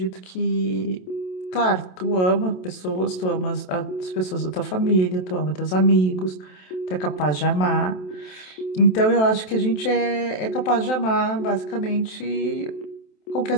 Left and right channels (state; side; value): late; right; 27 ms